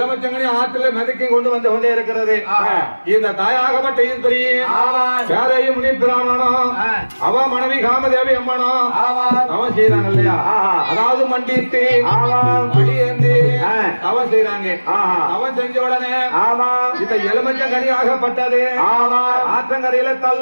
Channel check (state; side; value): inverted; both; correlation -1.00